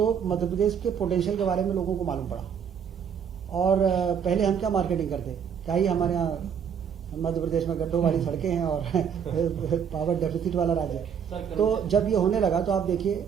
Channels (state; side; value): quieter; left; 7.6 dB